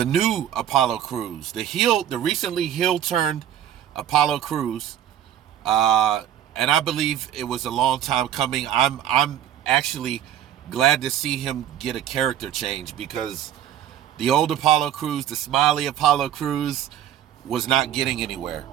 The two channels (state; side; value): quieter; left; 10.7 dB